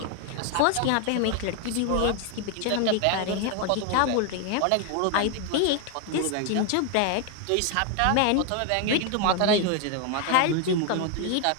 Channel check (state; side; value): different; both; correlation 0.01